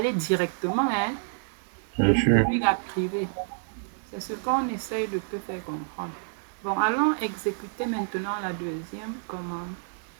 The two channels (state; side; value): silent; left; digital silence